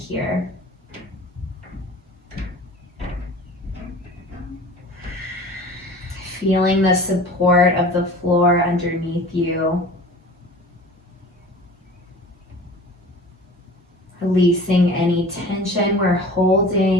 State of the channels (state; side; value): normal; both; correlation 0.41